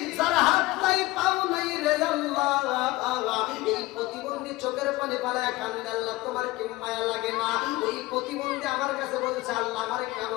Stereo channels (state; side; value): quieter; right; 19.3 dB